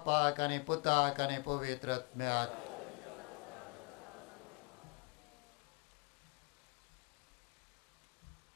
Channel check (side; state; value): right; quieter; 32.6 dB